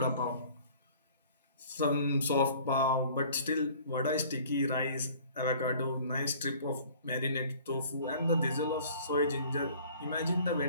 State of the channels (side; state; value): both; inverted; correlation -0.50